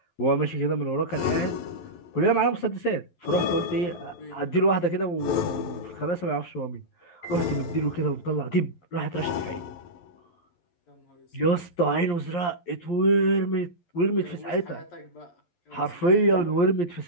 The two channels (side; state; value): right; late; 11 ms